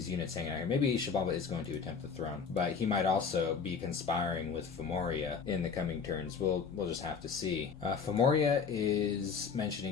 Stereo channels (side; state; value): right; quieter; 5.9 dB